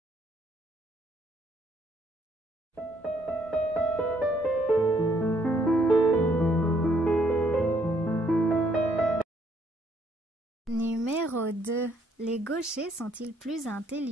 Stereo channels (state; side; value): normal; both; correlation 0.68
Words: Numéro 2. Les gauchers sont-ils plus